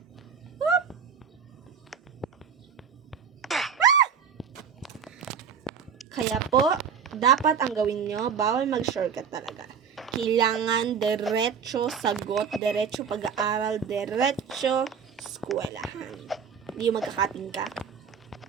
Whoop! Kaya po, dapat ang gawin nyo, bawal mag-shortcut talaga. Kailangan diretso sagot, diretso pag-aaral, diretso eskwelahan. Hindi yung magkakating ka.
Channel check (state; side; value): quieter; left; 6.9 dB